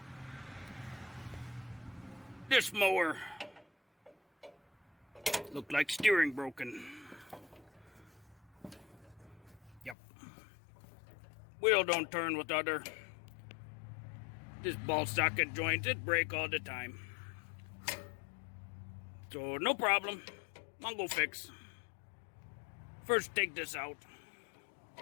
This mower look like steering broken. Yep. Wheel don't turn with other. This ball socket joint, it break all the time. So no problem. Mongo Fix. First take this out.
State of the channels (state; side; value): drops out; right; at 10.0 s